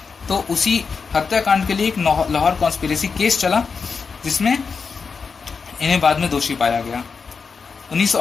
तो उसी हत्याकांड के लिए एक लाहौर कॉन्स्पिरेसी केस चला, जिसमें इन्हें बाद में दोषी पाया गया।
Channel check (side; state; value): right; quieter; 5.3 dB